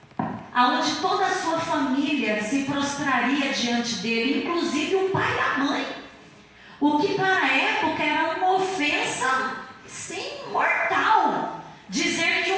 aonde toda a sua família se prostraria diante dele, inclusive o pai e a mãe. O que para a época era uma ofensa, sim, mortal. Dizer que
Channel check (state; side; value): identical; both; correlation 1.00